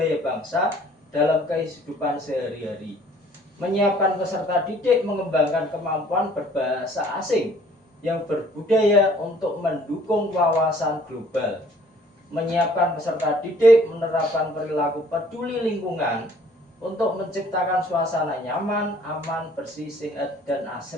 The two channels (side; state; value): both; normal; correlation 0.57